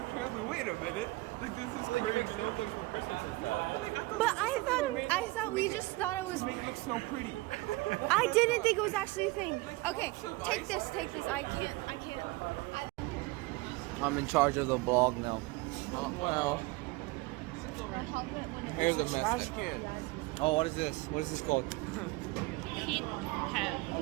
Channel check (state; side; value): quieter; left; 22.1 dB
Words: travel. Wait a minute. Like this is crazy. Snowflakes for Christmas and stuff. But like But I thought we just thought it was. to make it look snow pretty. I didn't think it was actually a thing. Okay, lots of take ice. this. I can't. I'm in charge of the vlog now. Wow. Here's a mess. Oh, what is this? What is this called? Heat have